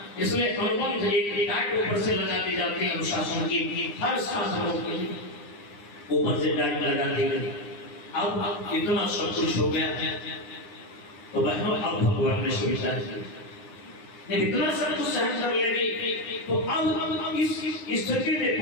इसलिए अनुबंध एक डांट ऊपर से लगा दी जाती है अनुशासन की, हर साधनों के ऊपर से डांट लगा दी गई। अब इतना सब कुछ हो गया तो बहनों, अब भगवान ने सुविचार किया, इतना सब कुछ सहन कर ले गई, तो अब इस स्थिति में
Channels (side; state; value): right; late; 9.7 ms